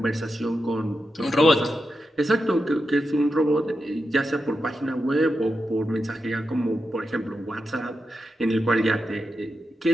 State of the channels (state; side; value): normal; both; correlation 0.88